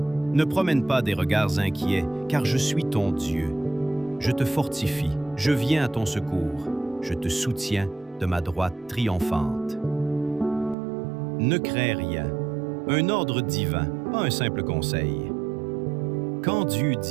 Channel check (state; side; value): drops out; left; at 10.8 s